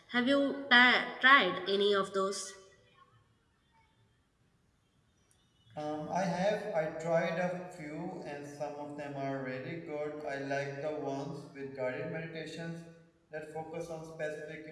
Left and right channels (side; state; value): both; identical; correlation 1.00